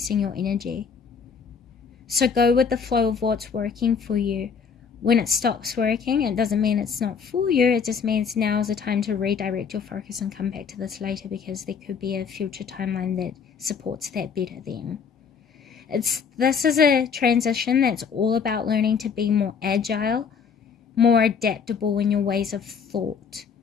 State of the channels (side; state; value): right; quieter; 6.3 dB